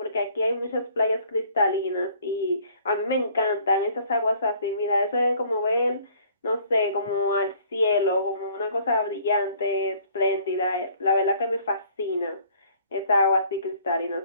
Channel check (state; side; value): inverted; both; correlation -0.57